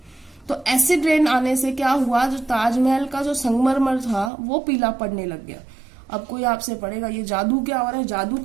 तो एसिड रेन आने से क्या हुआ, जो ताजमहल का जो संगमरमर था वो पीला पड़ने लग गया। अब कोई आपसे पढ़ेगा ये जादू क्या हो रहा है, जादू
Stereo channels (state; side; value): drops out; left; at 4.3 s